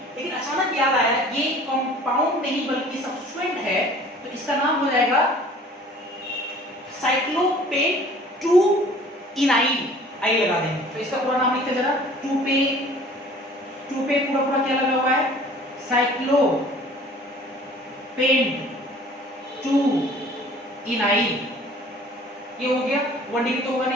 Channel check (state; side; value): normal; both; correlation 0.50